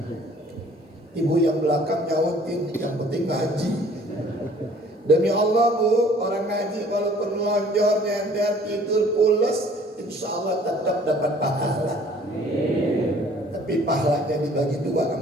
Ibu yang belakang nyautin, yang penting ngaji. Demi Allah bu, orang ngaji walaupun melonjor, nyender, tidur pulas, insya Allah tetap dapat pahala. Tapi pahalanya dibagi dua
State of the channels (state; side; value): normal; both; correlation 0.54